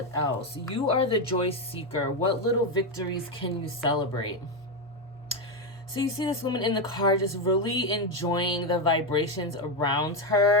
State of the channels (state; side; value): normal; both; correlation 0.08